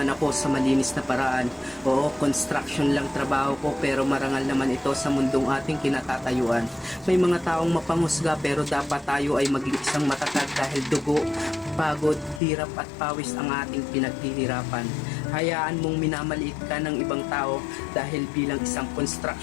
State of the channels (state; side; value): drops out; right; at 12.4 s